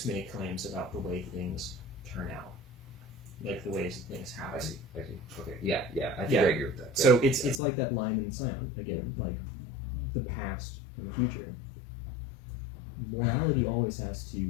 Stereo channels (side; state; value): right; drops out; at 7.6 s